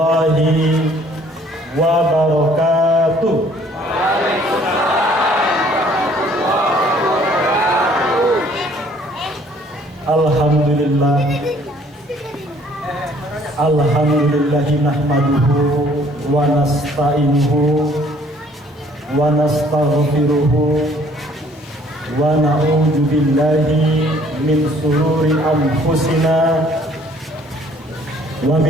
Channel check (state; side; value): normal; both; correlation 0.59